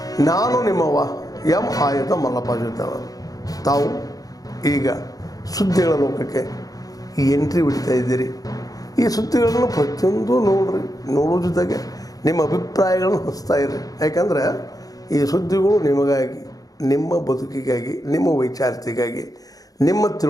ನಾನು ನಿಮ್ಮವ ಎಂ ಆಯುಧ ಮಲ್ಲಪ್ಪ ಜೊತೆಯವರು. ತಾವು ಈಗ ಸುದ್ದಿಗಳ ಲೋಕಕ್ಕೆ ಎಂಟ್ರಿ ಹೊಡಿತಾ ಇದ್ದೀರಿ. ಈ ಸುದ್ದಿಗಳನ್ನು ಪ್ರತಿಯೊಂದು ನೋಡೋ ಜೊತೆಗೆ ನಿಮ್ಮ ಅಭಿಪ್ರಾಯಗಳನ್ನು ಹಂಚ್ತಾ ಇರಿ. ಯಾಕಂದರೆ ಈ ಸುದ್ದಿಗಳು ನಿಮಗಾಗಿ, ನಿಮ್ಮ ಬದುಕಿಗಾಗಿ, ನಿಮ್ಮ ವೈಚಾರಿಕೆಗಾಗಿ, ನಿಮ್ಮ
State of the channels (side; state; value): right; late; 0.18 ms